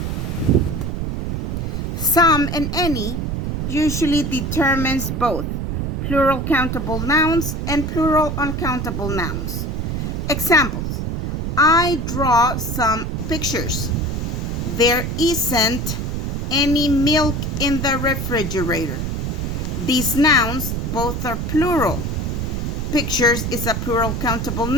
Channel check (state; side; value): noise; right; rumble, 2 dB below the sound